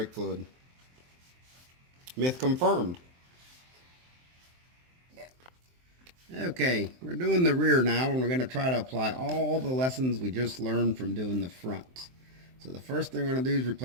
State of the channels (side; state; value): left; late; 23 ms